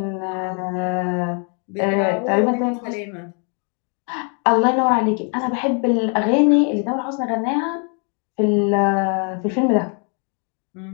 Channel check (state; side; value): quieter; right; 39.3 dB